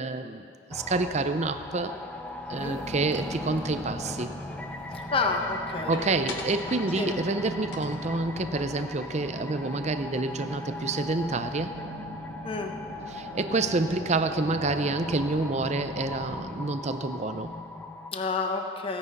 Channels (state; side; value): normal; both; correlation 0.39